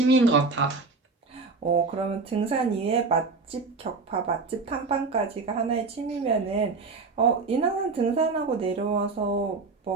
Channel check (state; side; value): quieter; left; 4.1 dB